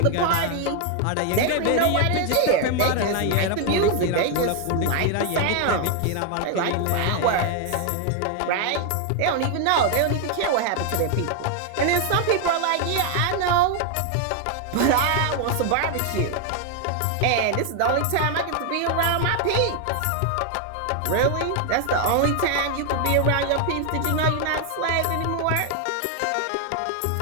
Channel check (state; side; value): different; both; correlation 0.01